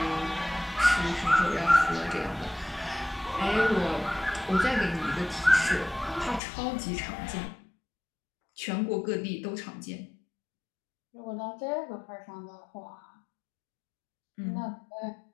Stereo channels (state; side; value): drops out; right; at 6.4 s